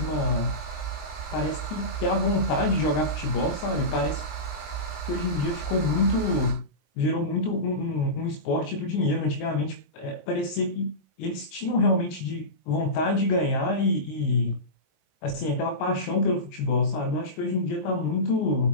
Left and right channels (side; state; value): right; late; 20 ms